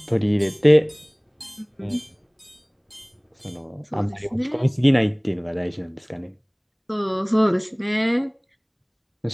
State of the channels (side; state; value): both; identical; correlation 1.00